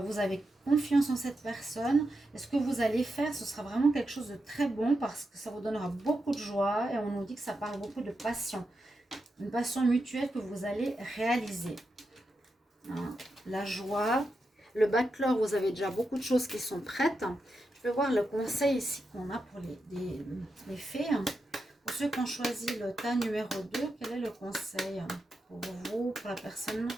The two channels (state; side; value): normal; both; correlation 0.87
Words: vous avez confiance en cette personne. Et ce que vous allez faire, ce sera vraiment quelque chose de très bon parce que ça vous donnera beaucoup de joie. Et on nous dit que ça parle beaucoup de passion. Une passion mutuelle que vous allez réaliser. Hein, la joie. Le backlog, vous avez déjà beaucoup de choses qui sont prêtes. Je vais voir le conseil ici qu'on a pour les fées. Pour ceux qui ont choisi le tas numéro 2, quel est le conseil pour vous, pour la personne